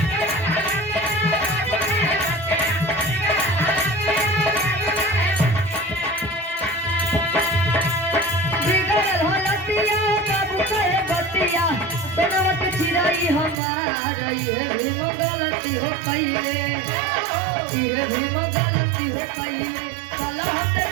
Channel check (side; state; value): left; drops out; at 13.6 s